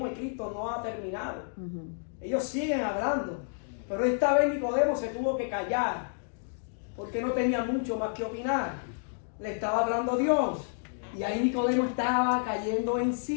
y Cristo no ha terminado. Ellos siguen hablando. Pero esta vez Nicodemo se tuvo que callar, porque no tenía mucho más que opinar. Le estaba hablando Dios. Y ahí Nicodemo estaba cayendo en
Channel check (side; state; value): right; silent; digital silence